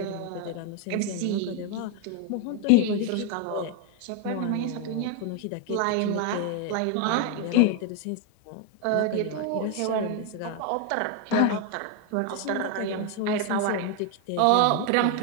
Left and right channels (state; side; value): different; both; correlation 0.01